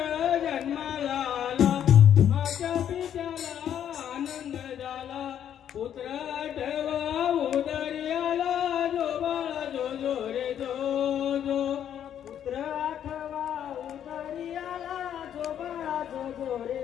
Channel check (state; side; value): quieter; right; 9.7 dB